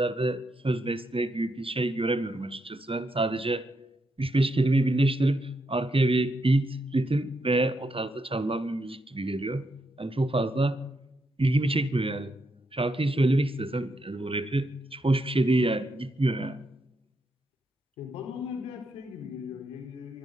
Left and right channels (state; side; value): normal; both; correlation 0.80